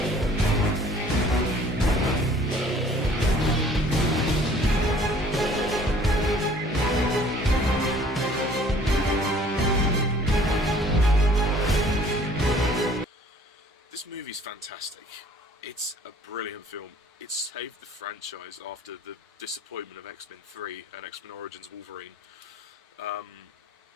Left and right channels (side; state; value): both; normal; correlation 0.54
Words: This movie's fantastic. It's a brilliant film. It saved the franchise after the disappointment of X-Men 3 and X-Men Origins Wolverine.